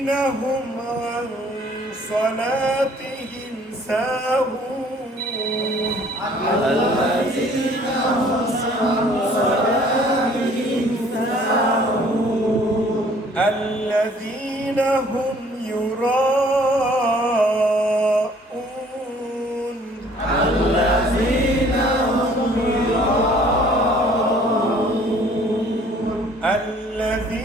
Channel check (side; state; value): both; normal; correlation 0.56